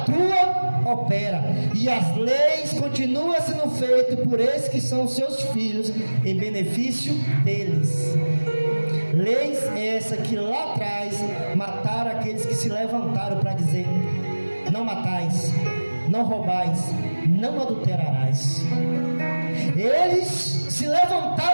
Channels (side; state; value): both; inverted; correlation -1.00